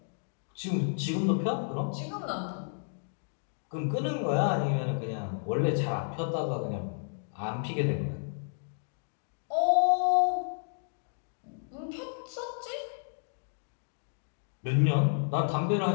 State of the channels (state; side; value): silent; right; digital silence